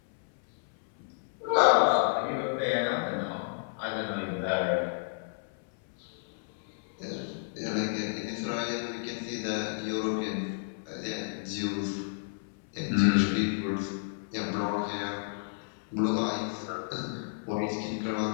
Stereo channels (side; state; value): right; silent; 57 dB below the other